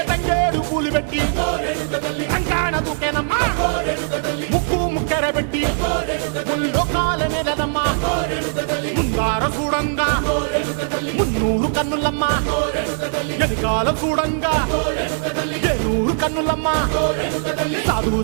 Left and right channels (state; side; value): silent; left; digital silence